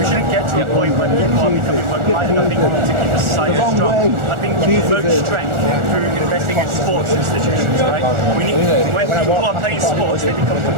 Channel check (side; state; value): left; late; 1.4 ms